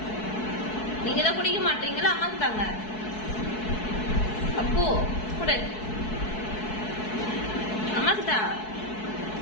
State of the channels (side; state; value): right; late; 4.6 ms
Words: நீங்க தான் குடிக்க மாட்டீங்களா? அம்மாக்கு தாங்க. அப்போ கொடு, அம்மாக்கு தா.